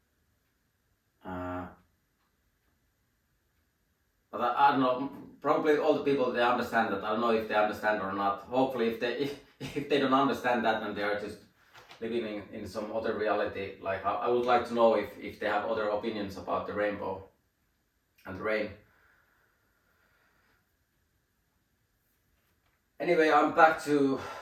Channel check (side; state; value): both; identical; correlation 1.00